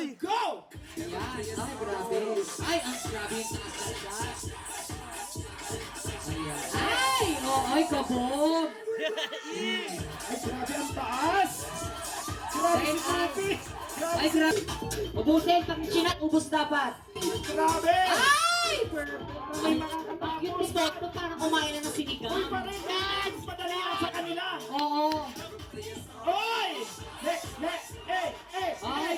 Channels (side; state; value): both; identical; correlation 1.00